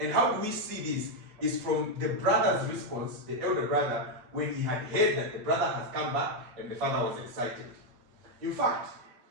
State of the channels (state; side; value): late; left; 8.5 ms